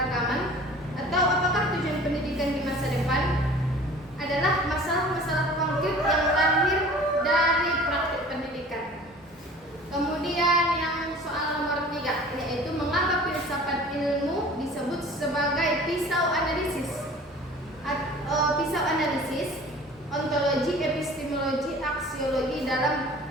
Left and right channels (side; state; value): both; normal; correlation 0.45